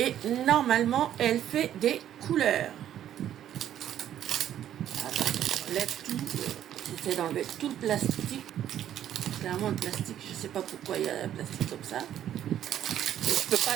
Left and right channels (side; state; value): left; quieter; 10.9 dB